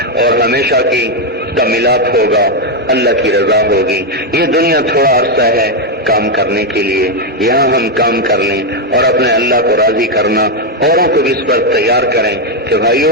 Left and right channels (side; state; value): both; normal; correlation 0.03